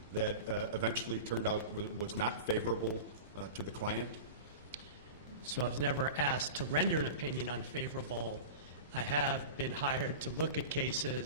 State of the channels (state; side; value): inverted; both; correlation -0.30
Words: that eventually turned out was not favorable to the client? So I was never asked to render an opinion unfavorable. I have been hired to look at